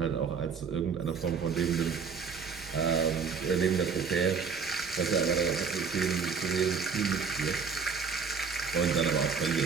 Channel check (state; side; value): quieter; left; 5.8 dB